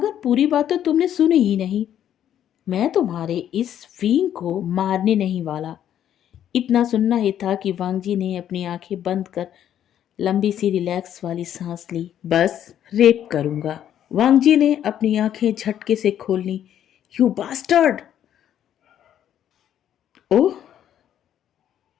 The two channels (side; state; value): right; quieter; 10.5 dB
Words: पूरी बात तो तुमने सुनी ही नहीं। मैं तुम्हारे इस वींग को मारने नहीं वाला। इतना सुनना ही था कि वांगजी ने अपनी आंखें बंद कर लंबी सी रिलैक्स वाली सांस ली। बस रेप करूंगा। वांगजी ने अपनी आंखें झटके से खोल ली। You bastard! ओह,